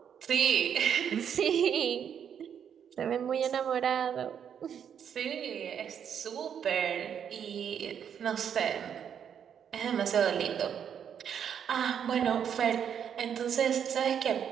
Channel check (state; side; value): quieter; left; 8.3 dB